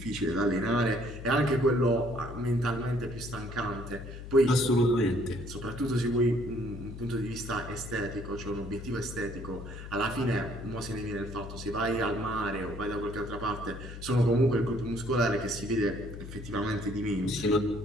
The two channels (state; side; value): noise; left; hum, 11 dB below the sound